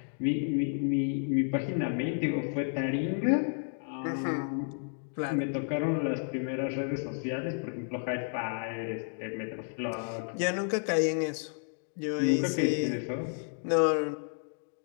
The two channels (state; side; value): silent; right; 57 dB below the other